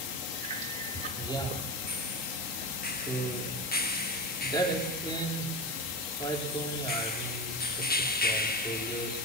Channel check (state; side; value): normal; both; correlation 0.21